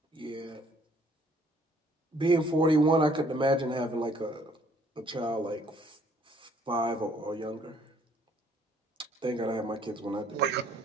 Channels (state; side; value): normal; both; correlation 0.62